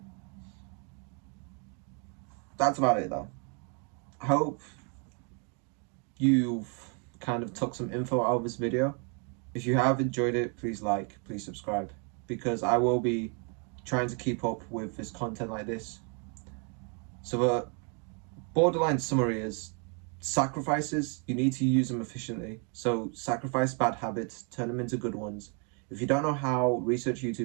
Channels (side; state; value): left; quieter; 37.6 dB